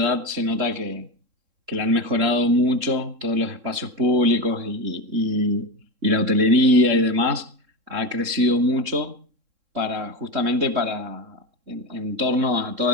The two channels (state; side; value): late; left; 3.7 ms